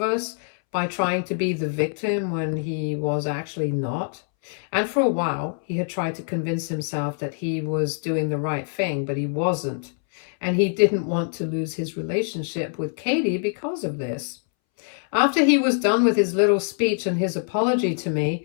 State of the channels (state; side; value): silent; right; 62 dB below the other